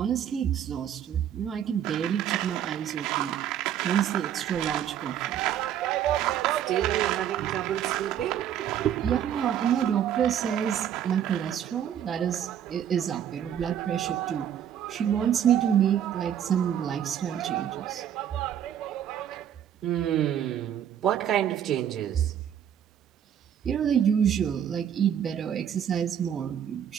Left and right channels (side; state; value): left; quieter; 9.7 dB